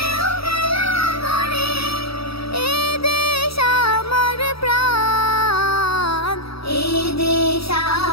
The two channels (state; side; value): late; right; 0.76 ms